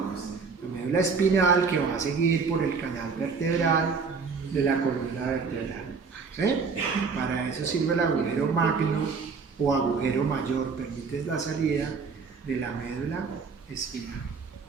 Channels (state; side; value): quieter; left; 5.1 dB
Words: La médula espinal que va a seguir por el canal vertebral de la columna vertebral. ¿Sí? Para eso sirve el agujero magno o agujero mayor, permite la salida de la médula espinal.